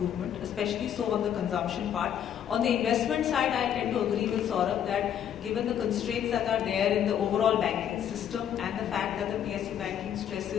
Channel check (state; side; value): quieter; right; 9.6 dB